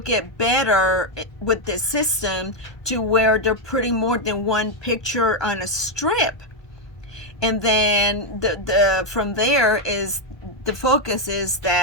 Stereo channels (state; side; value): late; right; 1.2 ms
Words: better with the system to where they're putting more than one picture on a strip. And then from there is the focus is